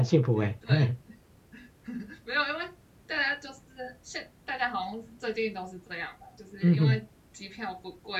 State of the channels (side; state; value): both; identical; correlation 1.00